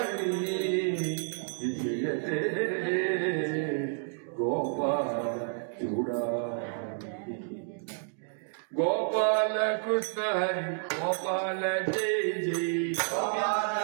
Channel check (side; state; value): left; silent; digital silence